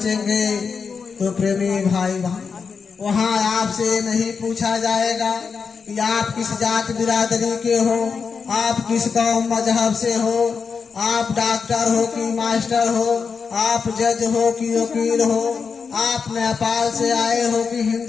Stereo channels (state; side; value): quieter; right; 5.6 dB